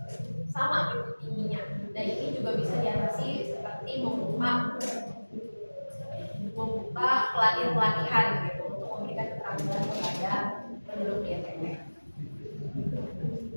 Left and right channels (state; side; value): inverted; both; correlation -1.00